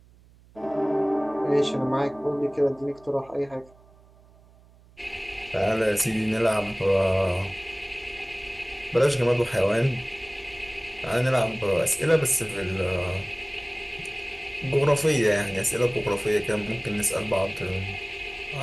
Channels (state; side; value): noise; right; hum, 27 dB below the sound